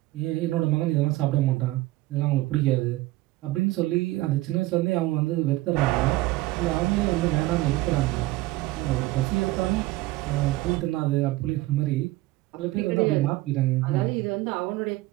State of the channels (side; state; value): left; quieter; 18.6 dB